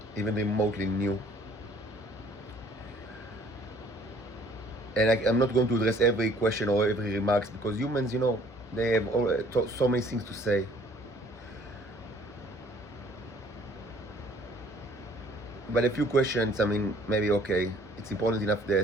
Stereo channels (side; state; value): both; normal; correlation 0.57